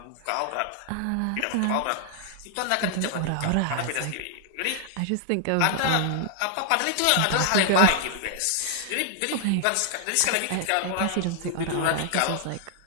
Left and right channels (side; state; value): both; different; correlation 0.00